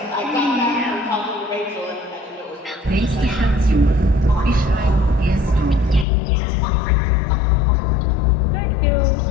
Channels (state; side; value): drops out; right; at 6.1 s